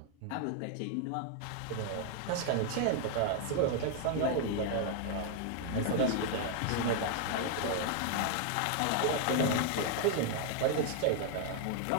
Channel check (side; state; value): both; different; correlation 0.00